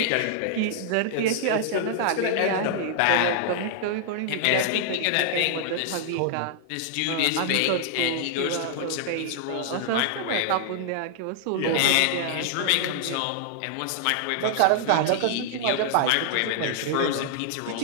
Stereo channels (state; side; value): different; both; correlation -0.01